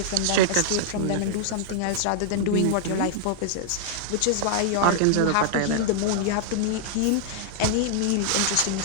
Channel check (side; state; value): both; different; correlation -0.01